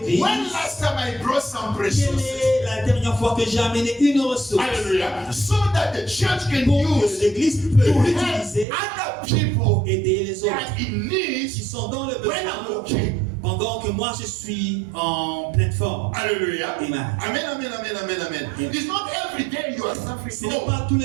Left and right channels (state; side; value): drops out; left; at 8.7 s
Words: when last time I brought some quelle resources? est la dernière fois que j'ai amené une ressource Hallelujah. So that the church can pour que use l'église peut to l'utiliser help other pour people aider les autres that in qui need sont dans le when I'm besoin okay. pendant que moi je suis en pleine forme. Hallelujah. Amen. Amen, amen, amen, amen, amen. Amen. It's not every day you are suffering. Ce n'est No. pas tous